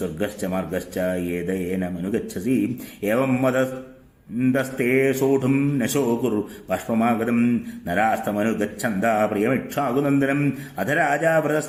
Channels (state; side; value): identical; both; correlation 1.00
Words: മാർഗശ്ച യേദയേനമനുഗച്ഛസി ഏവം വദസ്തേ സോഢും നശോ കുരു ബാഷ്പമാഗതം നരാസ്തമനുഗച്ഛന്താ പ്രിയമിക്ഷാകുനന്ദനം അധ രാജാ